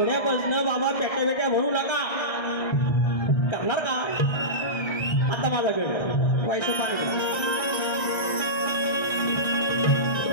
बाबा पेट्या भरू नका, करणार का? आता माझा गण व्हायचं पाणी.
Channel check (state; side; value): late; right; 1.6 ms